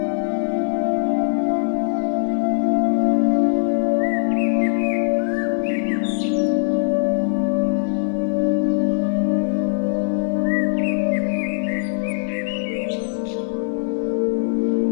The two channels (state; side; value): silent; right; digital silence